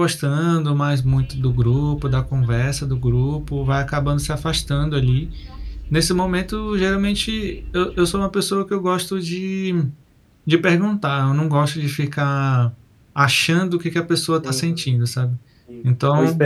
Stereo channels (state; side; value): identical; both; correlation 1.00